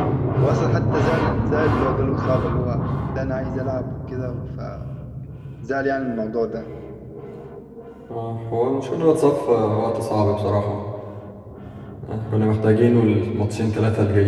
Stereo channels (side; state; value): both; identical; correlation 1.00